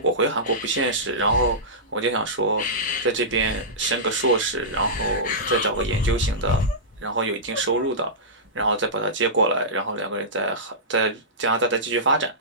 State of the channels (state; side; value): normal; both; correlation -0.16